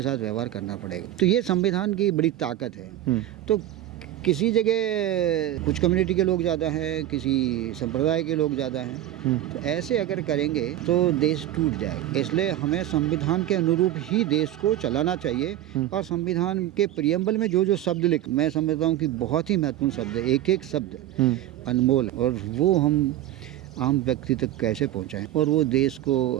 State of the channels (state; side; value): quieter; left; 13.1 dB